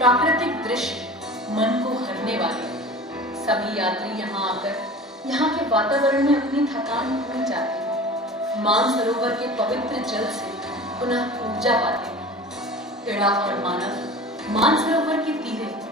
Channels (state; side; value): normal; both; correlation 0.38